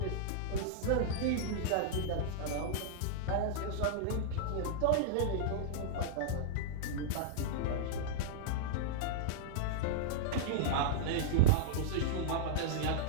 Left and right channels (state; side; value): different; both; correlation -0.01